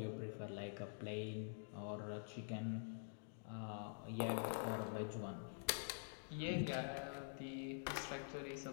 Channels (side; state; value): right; silent; digital silence